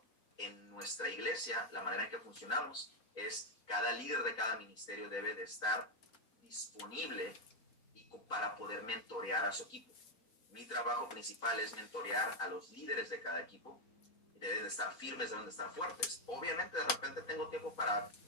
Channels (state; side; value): late; right; 4.0 ms